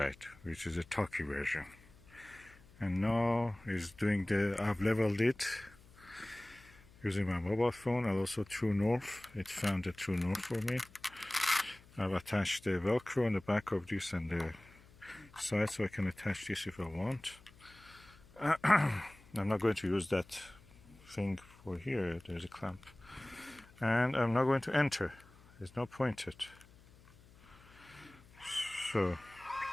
which is a talkie version. And now is doing I've leveled it using my mobile phone and also True North. It found a True North for me. I've attached the Velcro on the back of this and the side, so I can attach this if I want. I'm not going to use that thing for here. There's a clamp, and I'm not going to enter. There's no point it. So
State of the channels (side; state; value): left; noise; hum, 24 dB below the sound